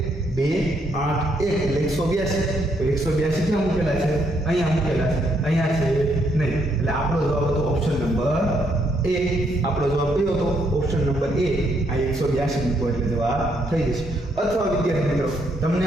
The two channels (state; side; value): normal; both; correlation 0.73